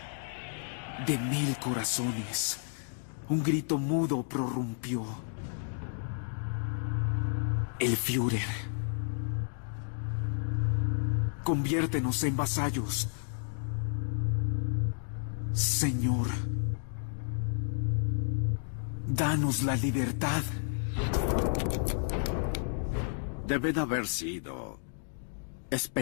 De 1000 corazones, un grito mudo prorrumpió. El Führer. Conviértenos en vasallos. Señor, danos la libertad. Deben haber sido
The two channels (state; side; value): silent; right; digital silence